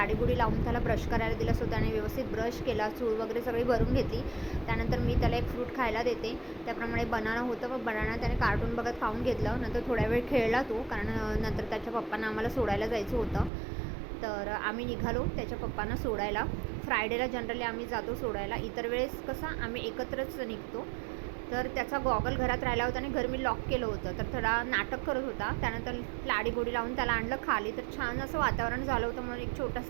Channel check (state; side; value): drops out; left; at 13.5 s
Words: लावून त्याला ब्रश करायला दिला. सो त्याने व्यवस्थित ब्रश केला, चूळ वगैरे सगळी भरून घेतली. त्यानंतर मी त्याला एक फ्रूट खायला देते. त्याप्रमाणे बनाना होतं, व बनाना त्याने कार्टून बघत खाऊन घेतलं. नंतर थोड्या वेळ खेळला तो, कारण नंतर त्याच्या पप्पांना आम्हाला सोडायला जायचं होतं. तर आम्ही निघालो त्याच्या पप्पांना सोडायला. फ्रायडेला जनरली आम्ही जातो सोडायला, इतर वेळेस कसं आम्ही एकत्रच निघतो. तर त्याचा गॉगल घरात राहिला होता आणि घर मी लॉक केलं होतं, तर थोडा नाटक करत होता. त्यानंतर लाडीगोडी लावून त्याला आणलं खाली, तर छान असं वातावरण झालं होतं म्हणून एक